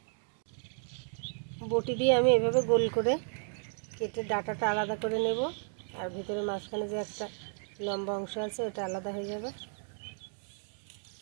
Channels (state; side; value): silent; left; 55 dB below the other